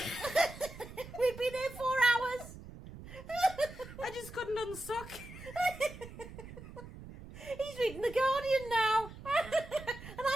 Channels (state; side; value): noise; right; rumble, 14 dB below the sound